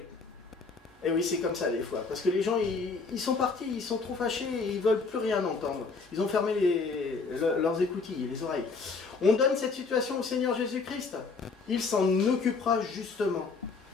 Et oui, c'est comme ça des fois. Parce que les gens, ils sont partis, ils sont trop fâchés et ils veulent plus rien entendre. Ils ont fermé leurs écoutilles, les oreilles. On donne cette situation au Seigneur Jésus-Christ. Il s'en occupera justement.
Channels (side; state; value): right; quieter; 4.5 dB